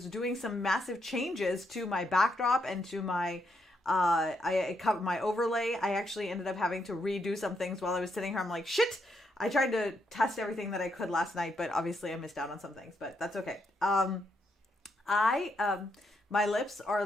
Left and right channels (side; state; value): both; normal; correlation 0.78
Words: doing some massive changes to my backdrop and to my I covered my overlay. I actually ended up having to redo some things while I was sitting here. I'm like, shit. I tried to test everything that I could last night, but obviously I missed out on some things, but that's okay. I My lips are a